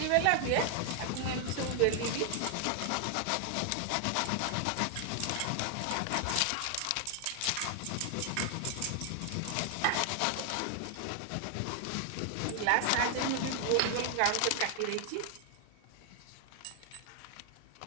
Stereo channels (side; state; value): both; different; correlation 0.00